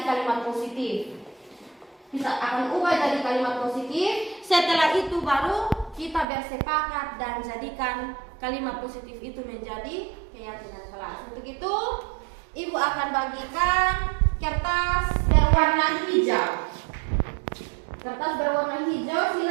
kalimat positif. Kita akan ubah jadi kalimat positif. Setelah itu baru kita bersepakat dan jadikan kalimat positif itu menjadi keyakinan kelas. Untuk itu, ibu akan bagikan kertas berwarna hijau. Kertas berwarna hijau,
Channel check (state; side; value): drops out; left; at 6.2 s